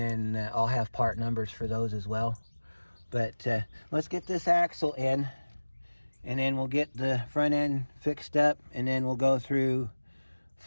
I'll have part numbers for those as well. But let's get this axle in, and then we'll get the front end fixed up, and then we'll go through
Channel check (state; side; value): inverted; both; correlation -1.00